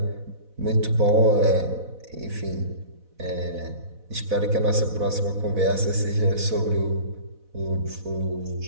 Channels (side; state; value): left; late; 4.1 ms